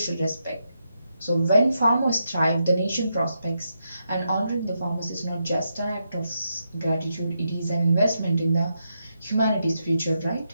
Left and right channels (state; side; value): inverted; both; correlation -0.83